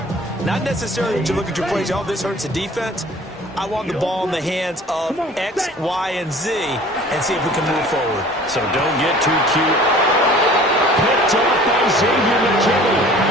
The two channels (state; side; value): normal; both; correlation 0.48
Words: Not necessarily that you look at your plays, oh, this hurts the defense. I want the ball in the hands of X, Y, and Z and see if we can move forward. So don't get too cute. Picked up by Xavier McKinney.